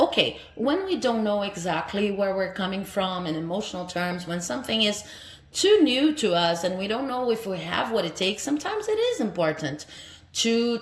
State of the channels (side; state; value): both; identical; correlation 1.00